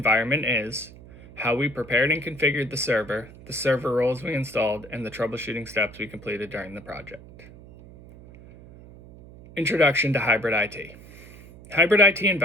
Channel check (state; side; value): noise; right; hum, 19 dB below the sound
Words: is, how we prepared and configured the server roles we installed, and the troubleshooting steps we completed during the project. Introduction to hybrid IT. Hybrid IT